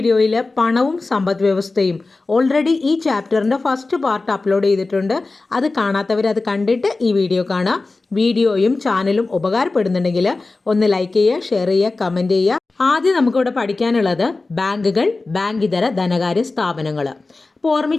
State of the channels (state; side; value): quieter; right; 3.5 dB